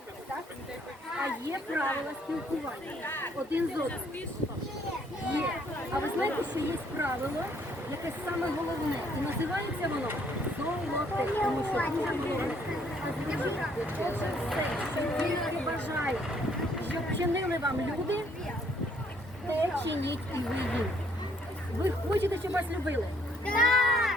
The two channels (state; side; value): normal; both; correlation 0.65